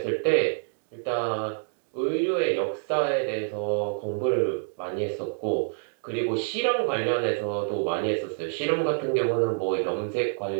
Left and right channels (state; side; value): silent; left; digital silence